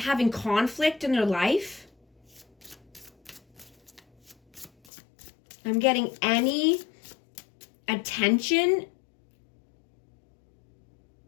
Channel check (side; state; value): right; drops out; at 4.7 s